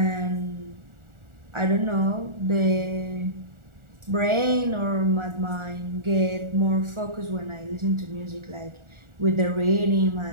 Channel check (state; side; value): late; left; 1.4 ms